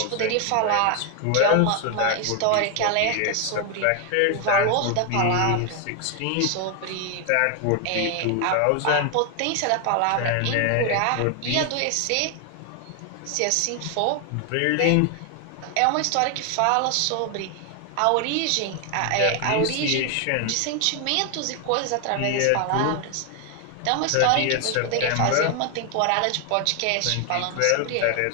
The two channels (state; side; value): different; both; correlation 0.01